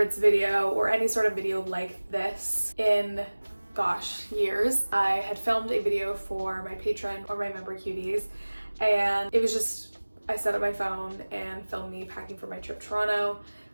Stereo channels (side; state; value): both; inverted; correlation -1.00